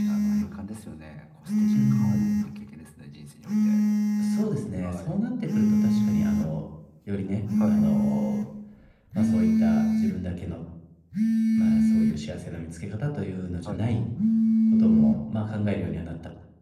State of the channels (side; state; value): both; identical; correlation 1.00